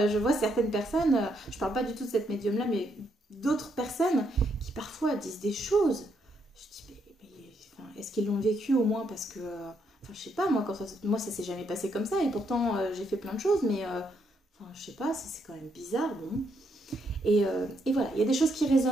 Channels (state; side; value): normal; both; correlation 0.76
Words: je vois certaines personnes, je parle pas du tout de cette médium-là, mais d'autres personnes qui parfois disent des choses. Je dis, enfin, est-ce qu'ils l'ont vécu au moins parce que... enfin, je sais pas, moi ça s'est jamais passé comme ça, et pourtant j'ai fait plein de choses, mais... enfin, je sais pas, c'est quand même bizarre, bon. Et voilà, il y a des choses qui